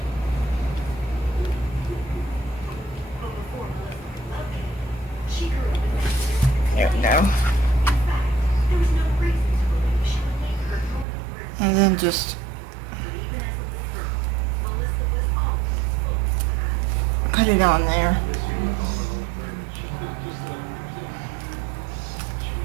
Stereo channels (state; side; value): drops out; left; at 11.1 s